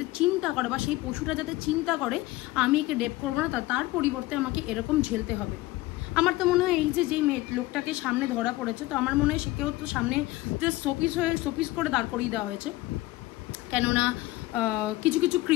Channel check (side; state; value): right; quieter; 18.5 dB